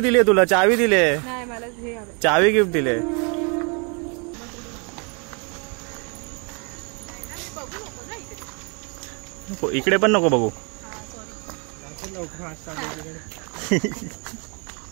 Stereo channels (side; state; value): left; quieter; 34.4 dB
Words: तुला. चावी दिले. नाही मला हे हवं. चावी गिफ्ट दिले. इकडे पण नको बघू.